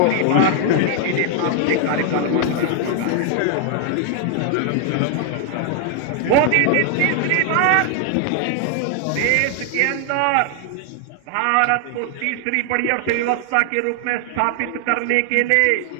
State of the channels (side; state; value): both; different; correlation 0.00